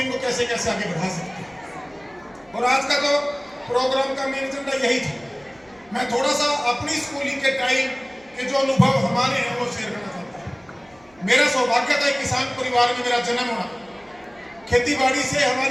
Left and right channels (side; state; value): right; noise; hum, 30 dB below the sound